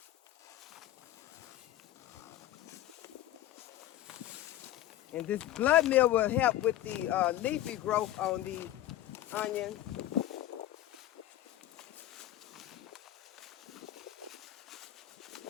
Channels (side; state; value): right; quieter; 13.9 dB